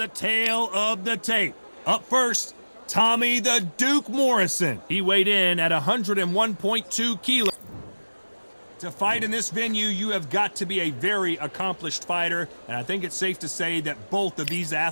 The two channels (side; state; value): both; inverted; correlation -1.00